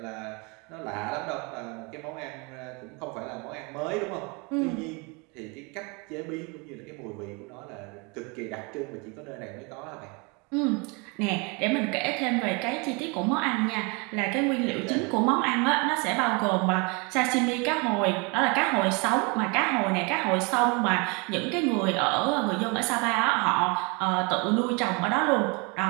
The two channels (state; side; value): quieter; left; 30.6 dB